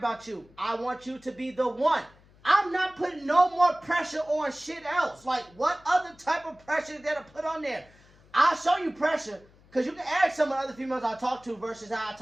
you. I want you to be the one. I'm not putting no more pressure on shit else. Like, what other type of pressure is there to put on there? I'll show you pressure. Because you can ask some of the other females I talk to versus how I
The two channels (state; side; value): noise; left; hum, 28 dB below the sound